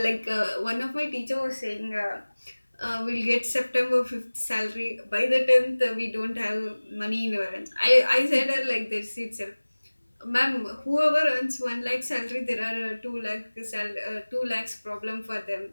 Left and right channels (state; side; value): inverted; both; correlation -1.00